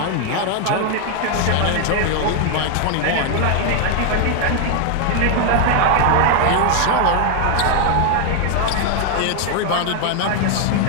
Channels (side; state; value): both; different; correlation 0.00